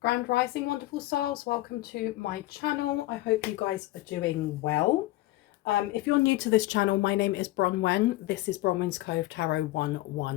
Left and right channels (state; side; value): quieter; right; 17.6 dB